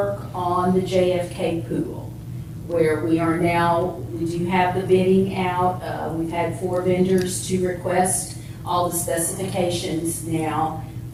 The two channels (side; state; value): both; identical; correlation 1.00